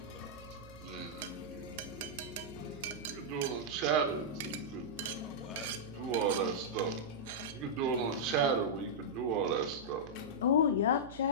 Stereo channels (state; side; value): noise; right; hum, 17 dB below the sound